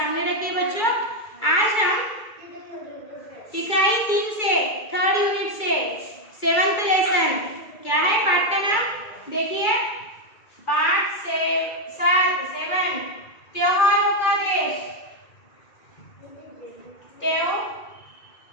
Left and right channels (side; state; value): right; late; 2.3 ms